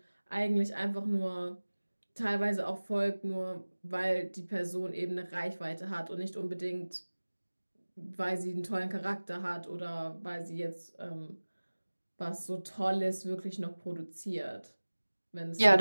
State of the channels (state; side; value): inverted; both; correlation -1.00